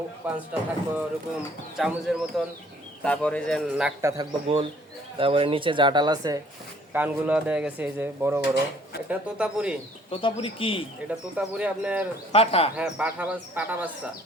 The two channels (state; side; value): normal; both; correlation 0.59